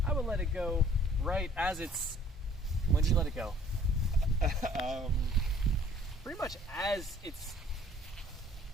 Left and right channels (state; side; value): normal; both; correlation 0.56